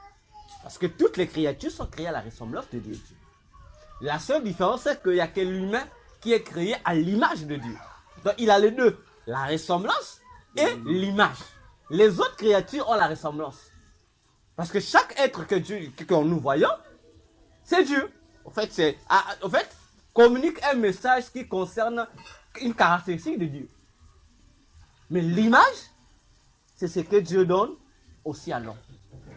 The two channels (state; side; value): identical; both; correlation 1.00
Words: Parce que toutes les créatures sont créées à la ressemblance de Dieu. La seule différence, c'est qu'il n'y a que l'humain qui est créé à l'image de Dieu. Donc il a les deux, la ressemblance et l'image. Les autres créatures ont la ressemblance. Parce que chaque être que nous voyons, c'est Dieu. En fait, communique un message qui concerne une caractéristique de Dieu. Mais l'image, c'est ce que Dieu donne aussi à l'homme.